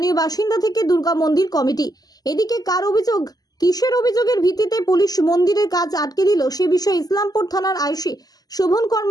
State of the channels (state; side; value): late; right; 0.18 ms